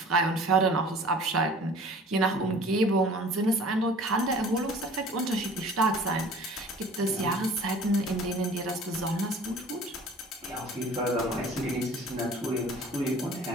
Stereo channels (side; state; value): both; normal; correlation 0.47